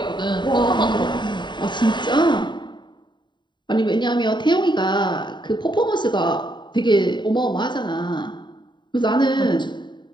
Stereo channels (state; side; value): late; right; 0.22 ms